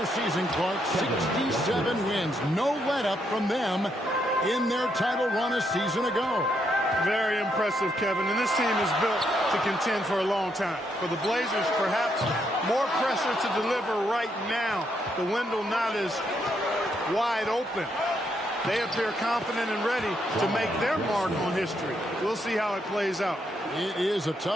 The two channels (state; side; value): normal; both; correlation 0.77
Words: season, Clark. 67 wins. No let-up from them in their title run a season ago. Very impressive, Kevin. And this team is built to contend for a long time. For the Blazers, perhaps more pressure to deliver right now. The window not as wide open. They appear confident and ready to make their mark on history. We'll see how it plays out. It is a